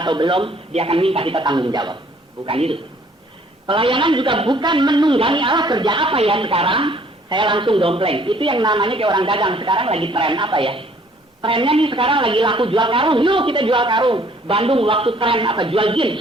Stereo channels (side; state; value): both; normal; correlation 0.59